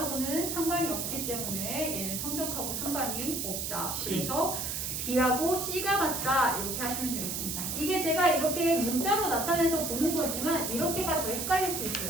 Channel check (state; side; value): noise; right; hiss, 3 dB below the sound